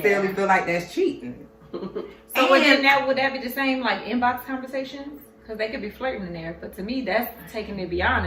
feel like that's cheating. So would that be the same like inbox conversations? Because they could be flirting in there, but to me that's taking it beyond.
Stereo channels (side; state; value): both; identical; correlation 1.00